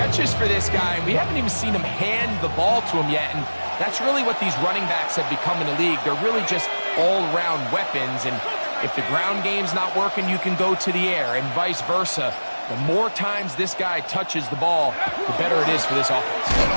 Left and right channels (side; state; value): both; inverted; correlation -1.00